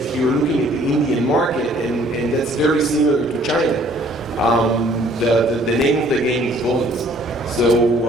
you're looking at the Indian market, and that's very similar to China, the name of the game is volume. So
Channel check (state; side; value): normal; both; correlation 0.58